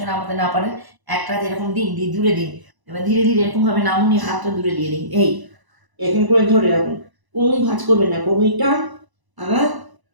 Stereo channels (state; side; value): late; left; 1.0 ms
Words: নামাতে না পারেন, একটা হাত এরকম দিন, দিয়ে দূরে দিন। এবার ধীরে ধীরে এরকমভাবে নামুন, হাতটা দূরে দিয়ে দিন। এই এরকম করে ধরে রাখুন, কোনোই ভাঁজ করবেন না, কোনোই টান, আবার